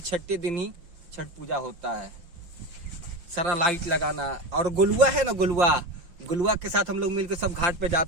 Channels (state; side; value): late; left; 5.7 ms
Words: छठे दिन ही छठ पूजा होता है। सारा लाइट लगाना और गोलुआ है ना, गोलुआ के साथ हम लोग मिलकर सब घाट पे